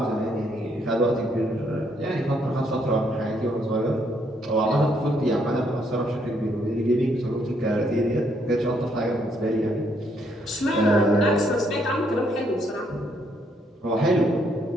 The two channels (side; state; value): both; normal; correlation 0.71